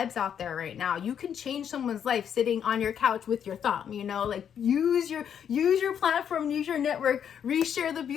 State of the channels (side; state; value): right; quieter; 8.5 dB